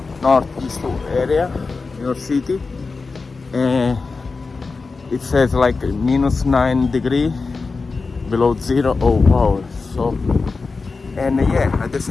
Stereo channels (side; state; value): right; quieter; 4.2 dB